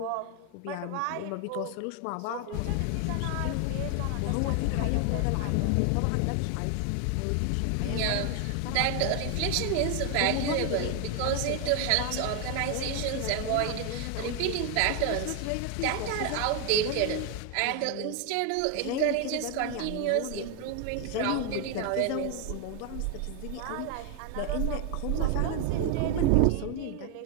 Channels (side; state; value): both; different; correlation 0.01